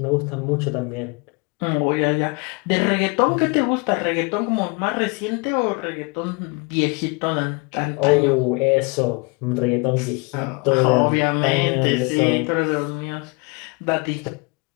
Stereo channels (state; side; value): quieter; right; 30.3 dB